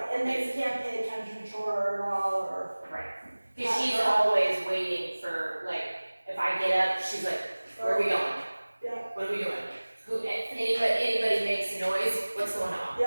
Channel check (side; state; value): both; inverted; correlation -1.00